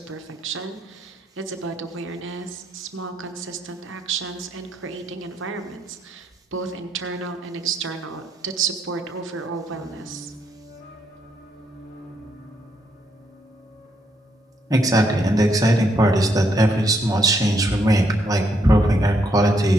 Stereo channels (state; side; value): normal; both; correlation 0.75